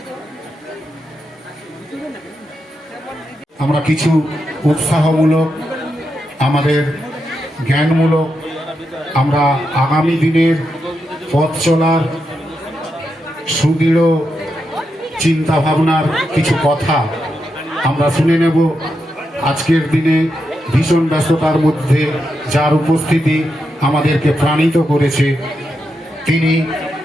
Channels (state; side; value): normal; both; correlation 0.85